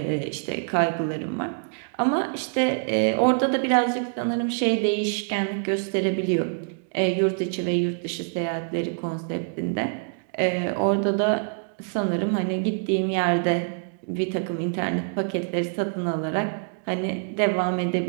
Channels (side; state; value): left; silent; digital silence